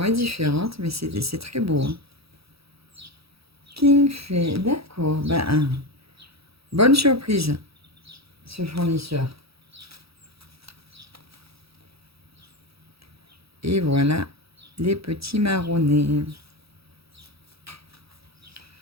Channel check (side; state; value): left; late; 0.77 ms